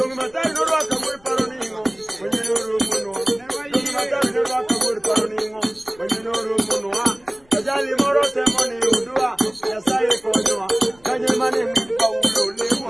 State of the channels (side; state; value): left; noise; rumble, 29 dB below the sound